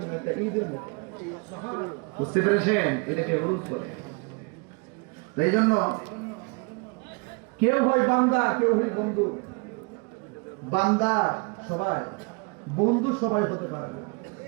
একটা ঈদের মতো। বুঝতে পেরেছেন? এটাকে অনুরোধ করে। এই জন্য কেউ হয় বান্দা, কেউ হয় বন্ধু। বান্দা সবাই, বন্ধু সবাই হতে পারে না।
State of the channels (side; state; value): left; quieter; 31.5 dB